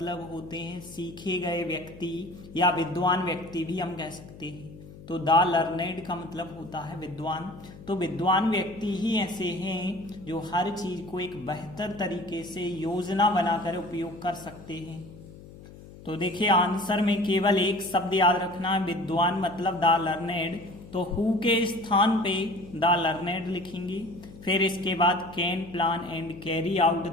होते हैं सीखे गए व्यक्ति या विद्वान व्यक्ति भी हम कह सकते हैं। तो द लर्नेड का मतलब होता है विद्वान। तो विद्वान व्यक्ति ही ऐसे हैं जो हर चीज को एक बेहतर तरीके से योजना बनाकर उपयोग कर सकते हैं। तो देखिए, आंसर में केवल एक शब्द याद रखना है, विद्वान मतलब द लर्नेड। तो हु के स्थान पे द लर्नेड लिखेंगे, फिर इसके बाद can plan and carry out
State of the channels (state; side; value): noise; left; hum, 18 dB below the sound